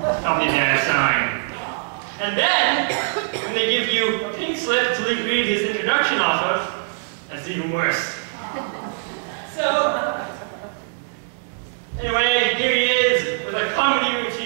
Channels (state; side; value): silent; left; 64 dB below the other